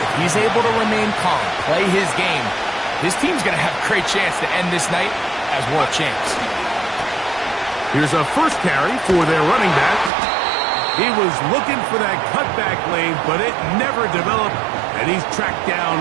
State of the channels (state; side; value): drops out; left; at 10.1 s